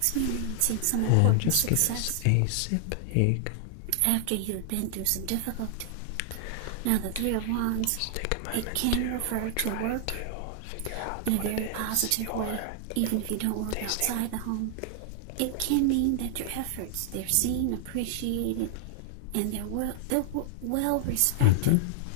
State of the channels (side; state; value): both; different; correlation 0.00